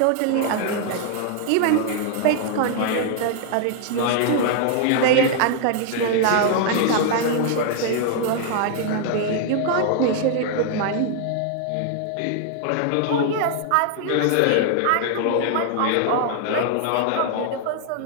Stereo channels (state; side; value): different; both; correlation 0.00